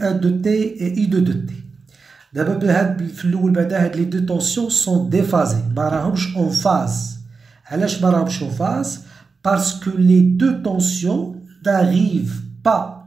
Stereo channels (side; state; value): left; quieter; 4.6 dB